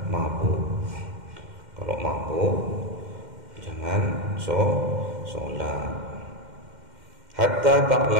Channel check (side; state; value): left; late; 2.1 ms